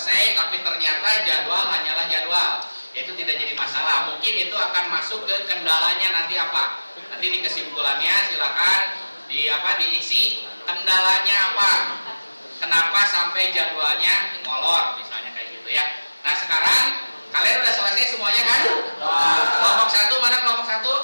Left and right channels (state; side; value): inverted; both; correlation -1.00